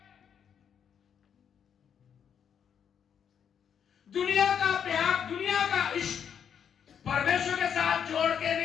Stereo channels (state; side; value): quieter; right; 8.0 dB